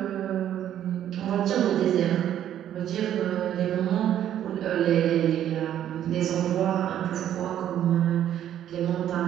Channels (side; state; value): left; quieter; 10.9 dB